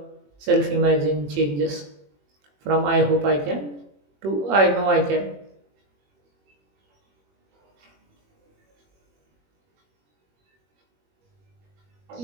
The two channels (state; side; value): late; left; 21 ms